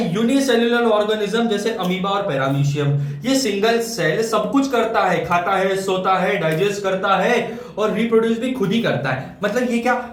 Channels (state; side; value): identical; both; correlation 1.00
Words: यूनिसेल्युलर ऑर्गेनिज्म, जैसे अमीबा और पैरामीशियम। ये सिंगल सेल सब कुछ करता है, खाता है, सोता है, डाइजेस्ट करता है और रिप्रोड्यूस भी खुद ही करता है। मतलब ये क्या